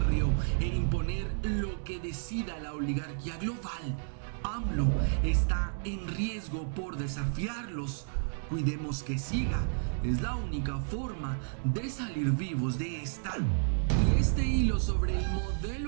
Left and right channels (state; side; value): silent; left; digital silence